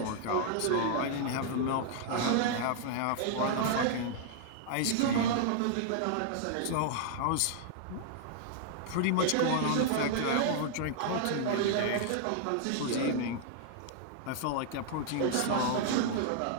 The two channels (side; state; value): both; different; correlation -0.01